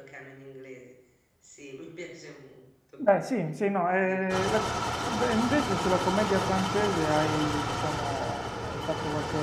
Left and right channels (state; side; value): identical; both; correlation 1.00